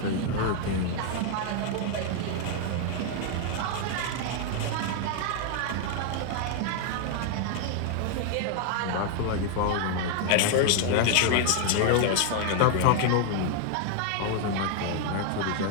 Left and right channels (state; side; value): different; both; correlation 0.00